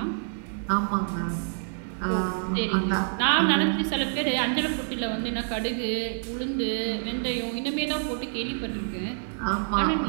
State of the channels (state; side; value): silent; left; digital silence